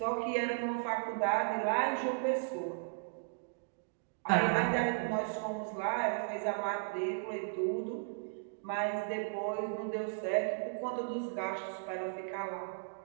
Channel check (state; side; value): silent; left; digital silence